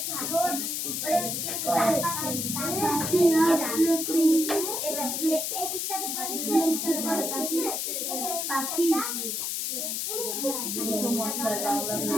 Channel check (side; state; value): left; noise; hiss, 1 dB below the sound